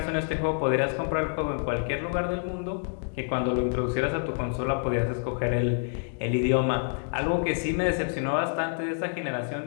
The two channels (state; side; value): silent; right; digital silence